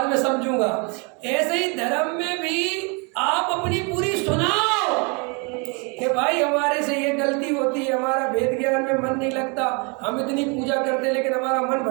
में समझूंगा। ऐसे ही धर्म में भी आप अपनी पूरी सुनाओ कि भाई हमारे से ये गलती होती है, हमारा वेद ज्ञान में मन नहीं लगता, हम इतनी पूजा करते लेकिन हमारा मन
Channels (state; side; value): quieter; left; 32.8 dB